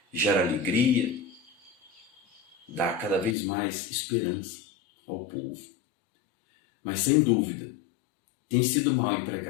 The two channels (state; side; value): drops out; right; at 3.4 s